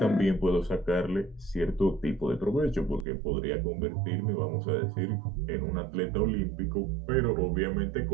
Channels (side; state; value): left; drops out; at 3.1 s